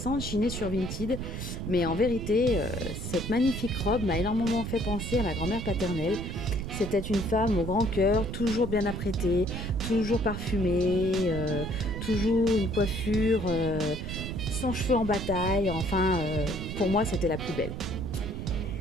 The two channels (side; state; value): right; noise; rumble, 6 dB below the sound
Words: chinée sur Vinted, mais en vérité, cette magnifique robe m'a énormément fait penser à ma grand-mère paternelle. C'était une femme au grand cœur, toujours bien apprêtée, toujours parfumée, toujours une coiffure sans cheveux en bataille, enfin, pour moi c'était la plus belle.